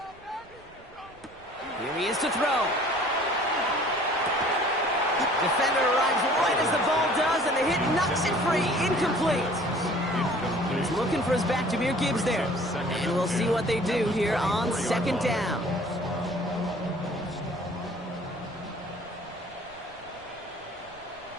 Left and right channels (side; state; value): right; noise; rumble, 25 dB below the sound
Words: Here he is to throw. Defender arrives right as the ball does, and the hit knocks it free. Incomplete. He's looking for his back, Jahmyr Gibbs there. And we'll see what they do here on 2nd down.